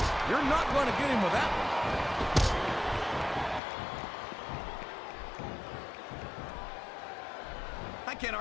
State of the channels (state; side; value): drops out; right; at 3.6 s